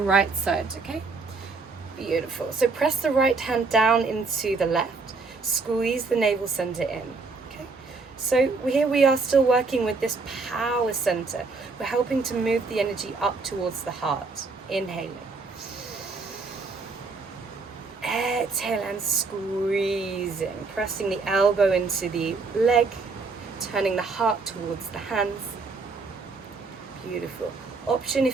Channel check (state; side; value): quieter; left; 4.1 dB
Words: side, okay? Beautiful. So press the right hand down into the left. Squeeze the navel center in, okay? So here we are still working with this power center. We're helping to move the energy up towards the heart. Inhaling. Exhale and squeezing. Pressing the elbow into the leg. Turning the heart towards the hands. Beautiful. Option,